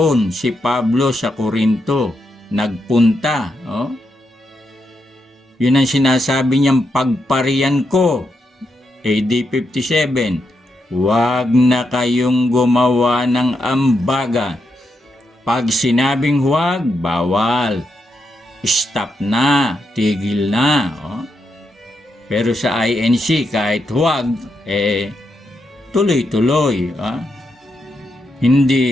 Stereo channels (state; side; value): normal; both; correlation 0.83